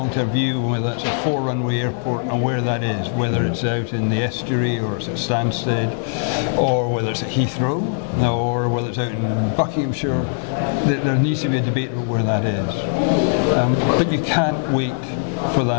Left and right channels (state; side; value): silent; right; 61 dB below the other